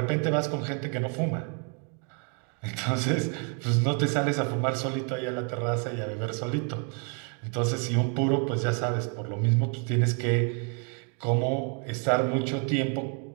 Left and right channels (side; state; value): left; quieter; 39.3 dB